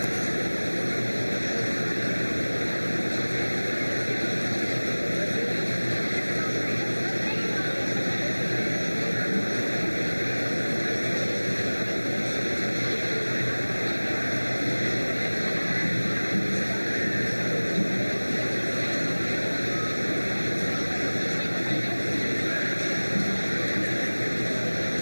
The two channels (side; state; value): both; inverted; correlation -1.00